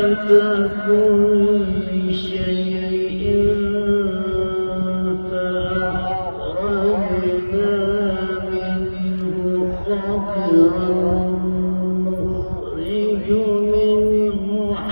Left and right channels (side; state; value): both; inverted; correlation -1.00